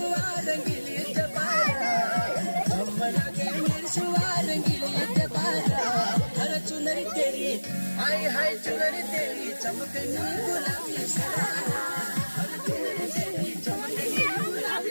रंगीली जबारा हम लगे मिर्शुआ रंगीली जबारा हर चुनरी तेरी हाय हाय चुनरी तेरी चमकनी गुलाबी शरारा हर चुनरी तेरी चमकनी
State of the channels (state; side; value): inverted; both; correlation -1.00